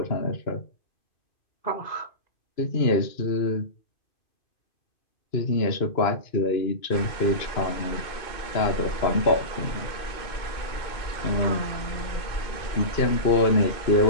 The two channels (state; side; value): late; right; 2.5 ms